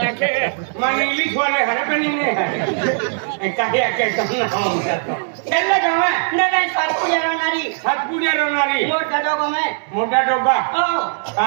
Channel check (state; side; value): silent; left; 66 dB below the other